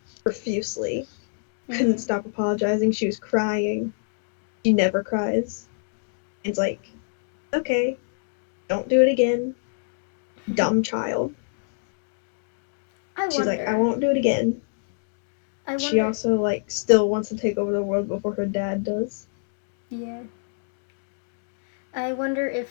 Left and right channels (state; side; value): silent; right; digital silence